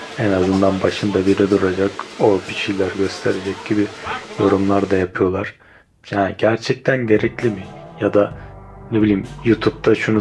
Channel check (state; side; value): identical; both; correlation 1.00